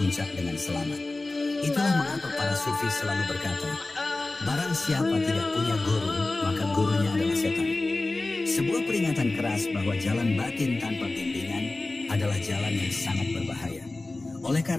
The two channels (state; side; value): quieter; right; 3.1 dB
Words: dengan selamat. Itulah mengapa para sufi selalu berkata, barang siapa tidak punya guru, maka gurunya adalah setan. Sebuah peringatan keras bahwa jalan batin tanpa bimbingan adalah jalan yang sangat berbahaya. Oleh